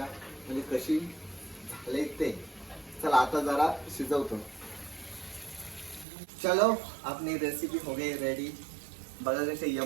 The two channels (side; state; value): left; drops out; at 6.1 s